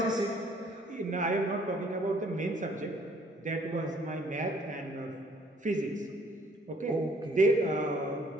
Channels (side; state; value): both; normal; correlation 0.61